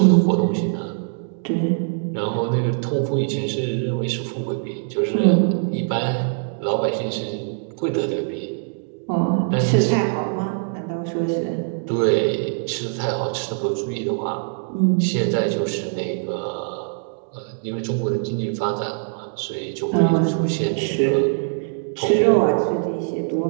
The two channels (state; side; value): silent; left; digital silence